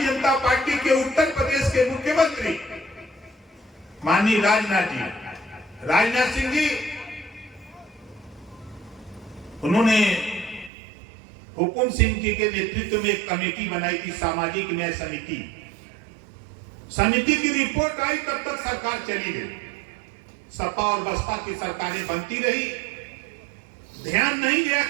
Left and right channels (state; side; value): drops out; left; at 10.7 s